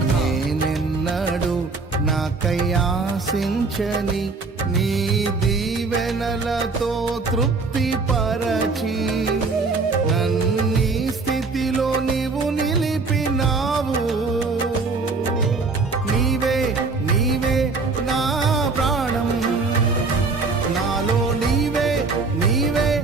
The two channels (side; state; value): left; quieter; 4.1 dB